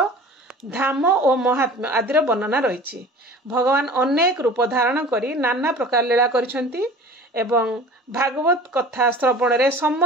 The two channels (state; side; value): normal; both; correlation 0.41